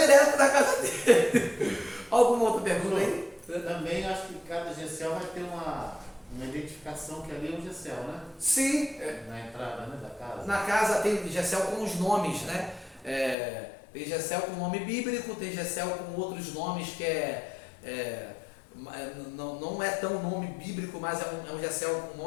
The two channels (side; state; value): right; drops out; at 13.4 s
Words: na casa dele. Alguma outra pergunta aí? Também acho que cada GECEL vai ter uma identificação que ali é um GECEL, né? Sim. Na entrada, né, da casa. Na casa tem GECEL com os nomes, né? Tem GECEL com nome bíblico, tem GECEL com outros nomes que não é tão nome bíblico, mas é um GECEL com